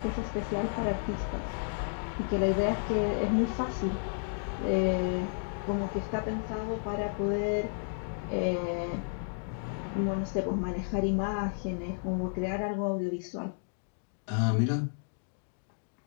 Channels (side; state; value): right; silent; digital silence